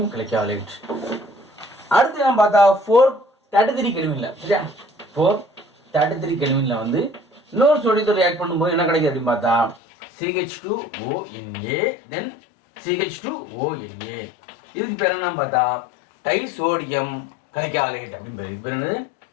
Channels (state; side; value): drops out; right; at 9.8 s